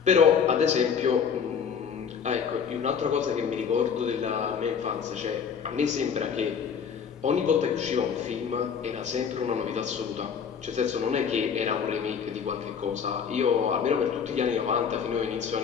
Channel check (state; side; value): quieter; right; 6.9 dB